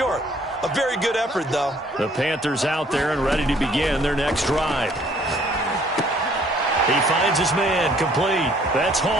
A very good effort, though. The Panthers out there and ready to begin their next drive. He finds his man complete. That's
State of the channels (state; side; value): normal; both; correlation 0.60